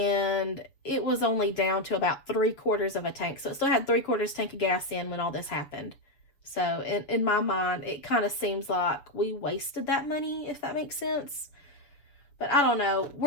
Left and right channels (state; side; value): late; right; 6.8 ms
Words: it was only down to about 3/4 of a tank. So it still had 3/4 tank of gas in when all this happened. So in my mind, it kind of seems like we wasted that money, if that makes sense. But I don't know.